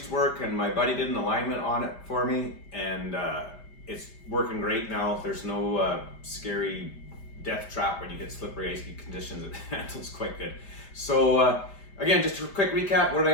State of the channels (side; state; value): right; late; 5.0 ms